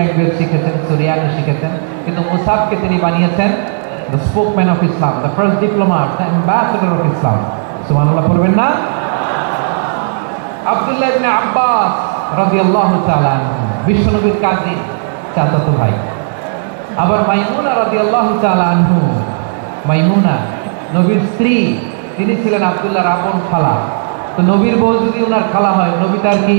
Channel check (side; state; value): left; silent; digital silence